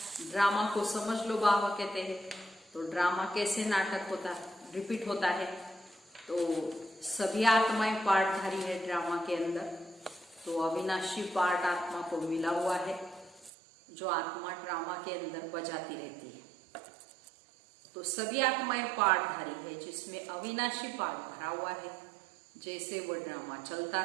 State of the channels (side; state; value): left; drops out; at 13.5 s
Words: ड्रामा को समझ लो बाबा कहते हैं। तो ड्रामा कैसे नाटक होता है, रिपीट होता है। तो सभी आत्माएं पार्टधारी है ड्रामा के अंदर। तो अविनाशी पार्ट आत्मा को मिला हुआ है, जो आत्मा ड्रामा के अंदर बजाती रहती है। तो सभी आत्माएं पार्टधारी है, जिसमें अविनाशी पार्ट भरा हुआ है। जैसे वो ड्रामा चलता